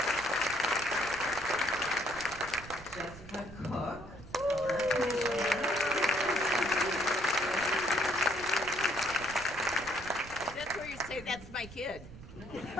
Jessica Cook. That's my kid.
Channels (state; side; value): noise; right; rumble, 16 dB below the sound